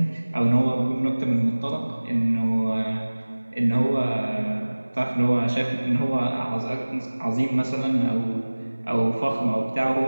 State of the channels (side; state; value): both; inverted; correlation -1.00